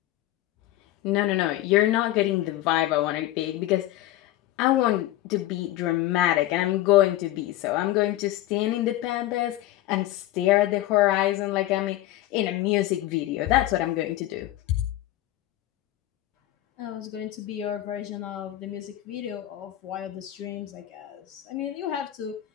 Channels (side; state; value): right; quieter; 15.0 dB